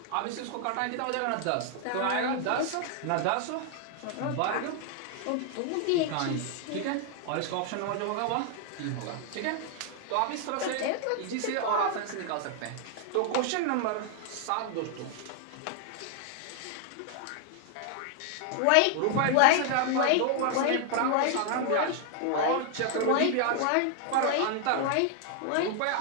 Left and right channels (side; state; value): both; different; correlation 0.00